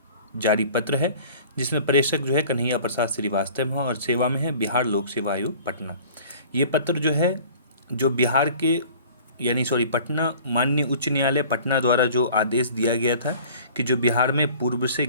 जारी पत्र है, जिसमें प्रेषक जो है कन्हैया प्रसाद श्रीवास्तव हैं और सेवा में है बिहार लोक सेवा आयोग पटना। ये पत्र जो है जो बिहार के पटना माननीय उच्च न्यायालय पटना द्वारा जो आदेश दिया गया था कि जो बिहार में पूर्व से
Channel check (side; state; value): both; inverted; correlation -0.47